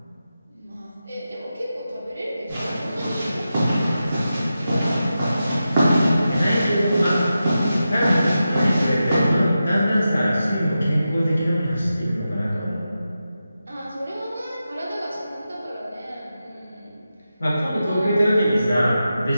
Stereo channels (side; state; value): both; inverted; correlation -0.91